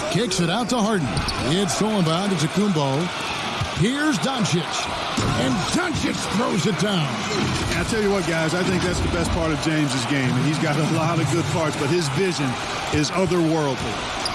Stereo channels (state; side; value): identical; both; correlation 1.00